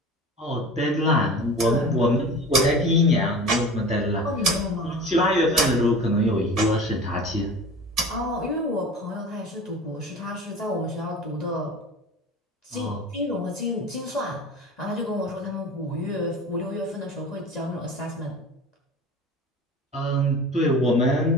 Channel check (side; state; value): both; normal; correlation 0.36